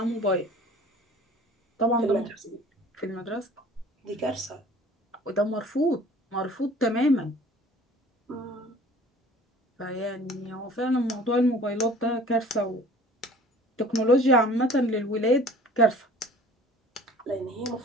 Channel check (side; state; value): both; normal; correlation 0.48